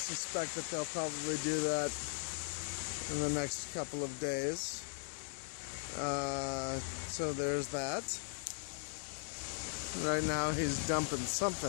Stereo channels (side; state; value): right; silent; 52 dB below the other